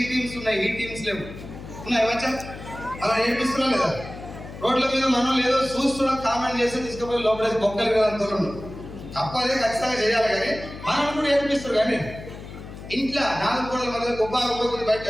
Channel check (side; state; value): left; noise; hum, 13 dB below the sound